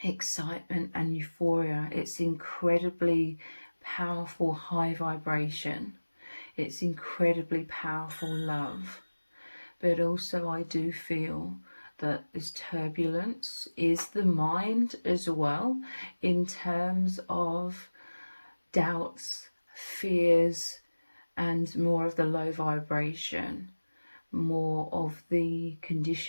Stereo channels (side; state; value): both; inverted; correlation -1.00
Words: excitement and euphoria. It's incredibly powerful high vibration. It's incredibly powerful love. But also I do feel that this turbulence is the mind as well, in terms of doubts, fears, and more of the low vibration, more of the